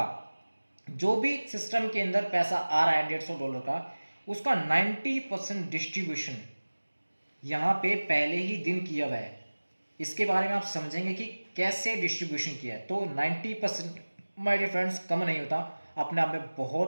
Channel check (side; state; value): both; inverted; correlation -1.00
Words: जो भी सिस्टम के अंदर पैसा आ रहा है $150 का, उसका 90% डिस्ट्रीब्यूशन यहाँ पे पहले ही दिन किया हुआ है। इसके बारे में आप समझेंगे कि कैसे डिस्ट्रीब्यूशन किया है। तो 90% माय डियर फ्रेंड्स कम नहीं होता, अपने आप में